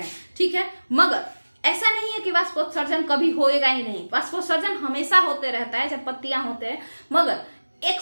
ठीक है। मगर ऐसा नहीं है कि वाष्पोत्सर्जन कभी होएगा ही नहीं, वाष्पोत्सर्जन हमेशा होते रहता है जब पत्तियां होते हैं, मगर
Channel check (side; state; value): both; inverted; correlation -1.00